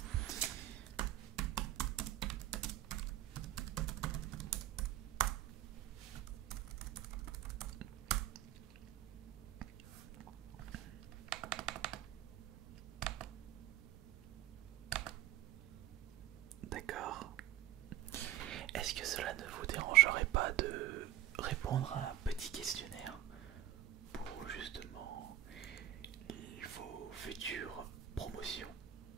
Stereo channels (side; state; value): left; quieter; 12.4 dB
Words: D'accord. Est-ce que cela ne vous dérangerait pas de répondre à un petit questionnaire pour justement vos futures promotions?